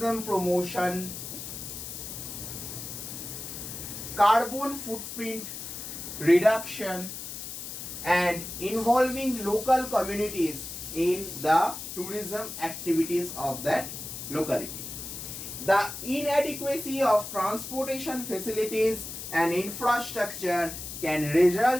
promotion, carbon footprint reduction, and involving local communities in the tourism activities of that locality. The inadequacy of transportation facilities and infrastructure can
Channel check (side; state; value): left; noise; hiss, 8 dB below the sound